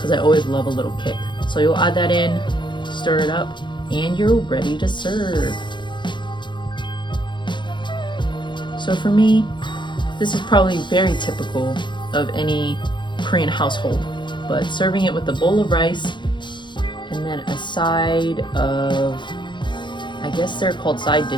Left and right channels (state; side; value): late; right; 0.23 ms